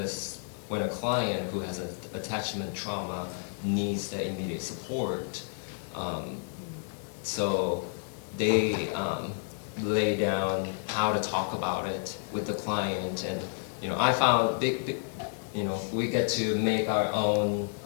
client who has an attachment trauma needs the immediate support. So they lay down how to talk about it with the client, and I found we get to make our own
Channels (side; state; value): right; silent; 57 dB below the other